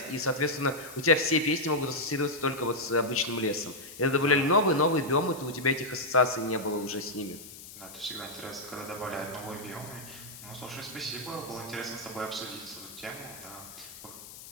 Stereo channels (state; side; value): noise; left; hiss, 15 dB below the sound